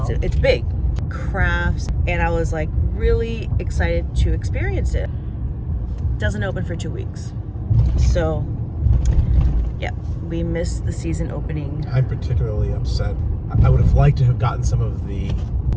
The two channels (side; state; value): both; identical; correlation 1.00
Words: big. Crafts. And I was like really excited to experience it. Doesn't open for 2 weeks. So yeah, we missed the season opening. I'm particularly upset. I would have liked to have gotten some of the